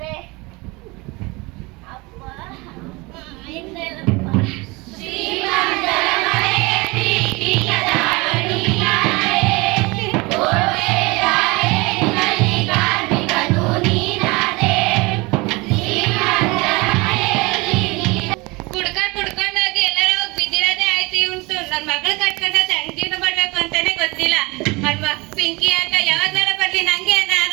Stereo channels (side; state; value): left; quieter; 24.8 dB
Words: ಅಪ್ಪ ಪಿಂಕಿ ಆಗ ಯಾವಾಗ್ಲಾರ ಬರ್ಲಿ ನಂಗೆ